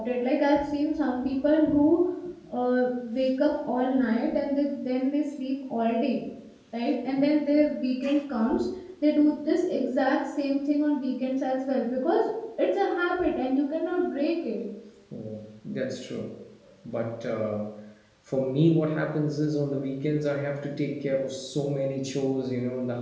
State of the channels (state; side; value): identical; both; correlation 1.00